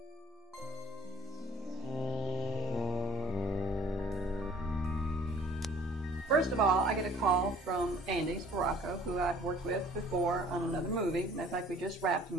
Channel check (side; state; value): both; normal; correlation 0.53